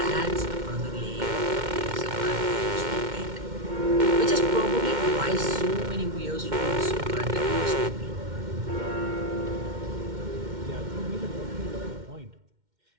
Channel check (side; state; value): left; late; 2.1 ms